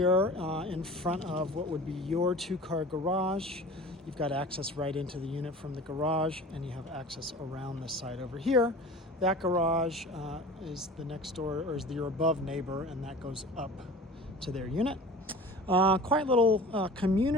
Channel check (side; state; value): both; normal; correlation 0.40